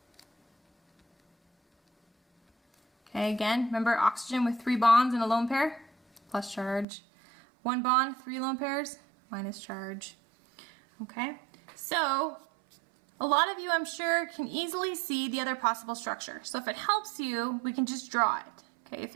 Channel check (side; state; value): left; drops out; at 6.9 s